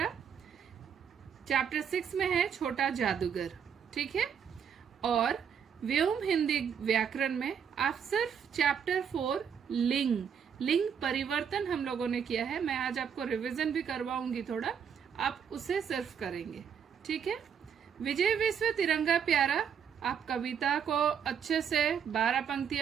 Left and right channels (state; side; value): quieter; left; 7.6 dB